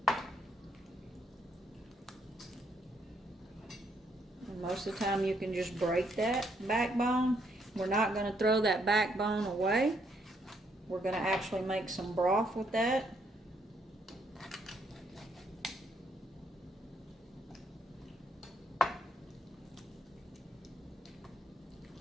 And most of the time you can just break that backbone. We're not going to throw that backbone away. We're going to actually make some broth with that.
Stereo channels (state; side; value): normal; both; correlation 0.73